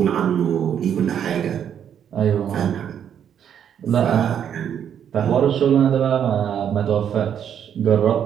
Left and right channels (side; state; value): left; quieter; 8.9 dB